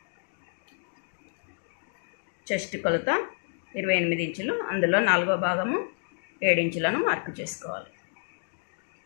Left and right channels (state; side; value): silent; right; digital silence